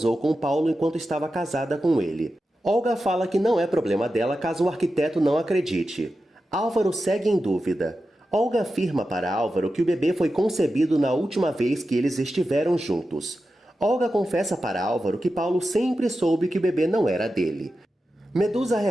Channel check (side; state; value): both; normal; correlation 0.91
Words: com Paulo enquanto estava casada com ele. Olga fala que não é problema dela caso o arquiteto não acredite. Álvaro segue em dúvida. Olga afirma para Álvaro que o bebê foi concebido na última vez que eles estiveram juntos. Olga confessa para Álvaro que Paulo sempre soube que o bebê não era dele. Medusa